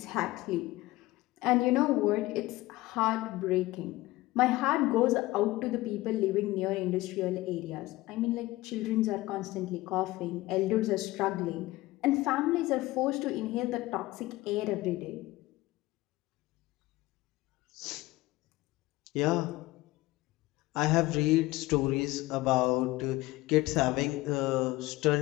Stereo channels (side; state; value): right; quieter; 18.8 dB